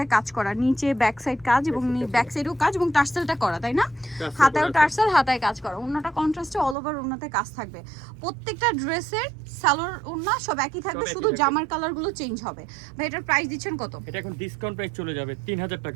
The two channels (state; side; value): drops out; left; at 6.8 s